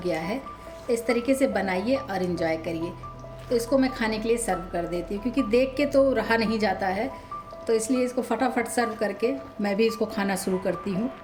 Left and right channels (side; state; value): both; identical; correlation 1.00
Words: गया है। इस तरीके से बनाइए और इन्जॉय करिए। तो इसको मैं खाने के लिए सर्व कर देती हूँ, क्योंकि देख के तो रहा नहीं जाता है, तो इसलिए इसको फटाफट सर्व करके मैं भी इसको खाना शुरू करती हूँ।